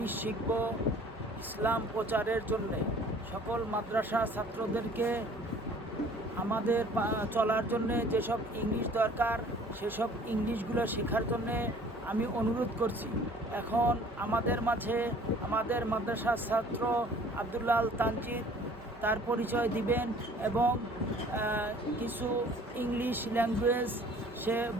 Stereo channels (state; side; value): normal; both; correlation 0.52